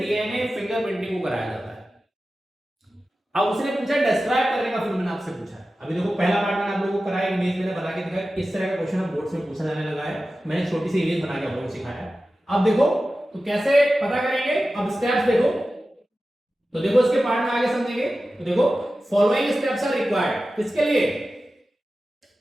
फिंगरप्रिंटिंग को कराया जाता है। अब उसने पूछा डिस्क्राइब करने का, फिर मैंने आपसे पूछा। अभी देखो पहला पार्ट मैंने आप लोगों को कराया, इमेज मैंने बना के दिखाया। इस तरह का क्वेश्चन अब बोर्ड में पूछा जाने लगा है, मैंने छोटी सी इमेज बना के आप लोगों को सिखाया। अब देखो तो कैसे पता करेंगे, अब स्टेप्स देखो। तो देखो इसके पार्ट में आगे समझेंगे। तो देखो फॉलोइंग स्टेप्स आर रिक्वायर्ड, किसके लिए?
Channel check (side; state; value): both; normal; correlation 0.94